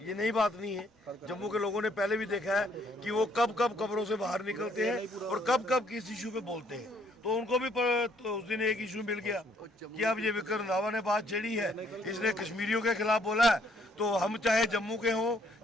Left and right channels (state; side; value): normal; both; correlation 0.66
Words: नई बात नहीं है। जम्मू के लोगों ने पहले भी देखा है कि वो कब कब कब्रों से बाहर निकलते हैं और कब कब किस इशू पे बोलते हैं। तो उनको भी तो उस दिन एक इशू मिल गया कि अब ये विक्रम रंधावा ने बात छेड़ी है, इसने कश्मीरियों के खिलाफ बोला है, तो हम चाहे जम्मू के हों,